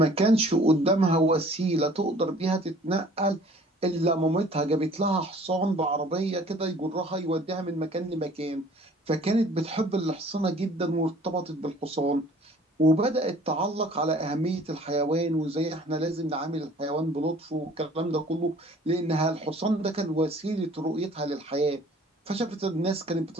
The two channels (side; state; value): both; normal; correlation 0.52